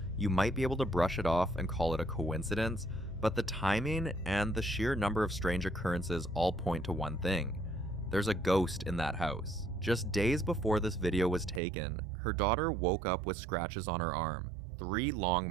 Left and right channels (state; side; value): drops out; left; at 11.6 s